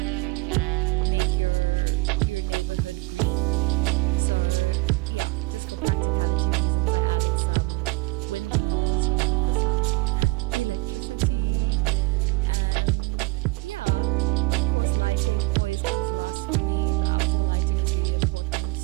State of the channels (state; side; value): quieter; left; 24.1 dB